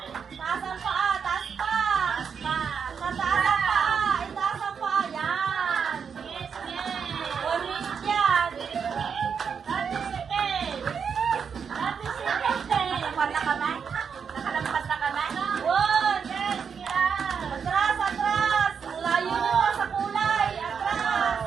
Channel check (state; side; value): quieter; left; 6.6 dB